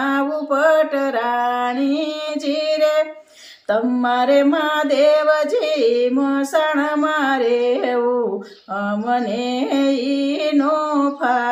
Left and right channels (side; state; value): both; identical; correlation 1.00